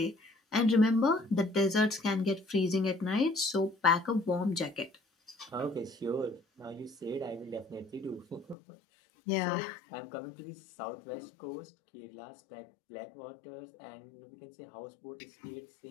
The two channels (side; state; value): right; drops out; at 8.6 s